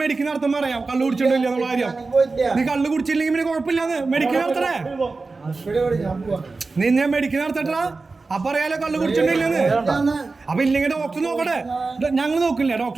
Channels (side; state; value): left; quieter; 3.9 dB